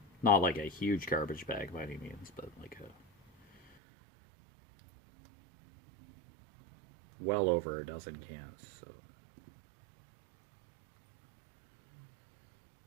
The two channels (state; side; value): drops out; left; at 3.8 s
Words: Not like a huge garbage bag by any means, but like a well over a dozen cans. So